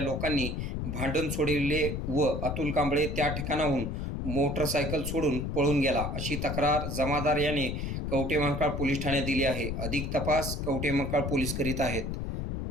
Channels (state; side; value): noise; left; rumble, 3 dB below the sound